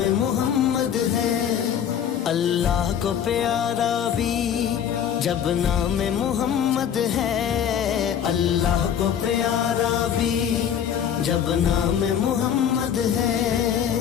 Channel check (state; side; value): quieter; right; 8.7 dB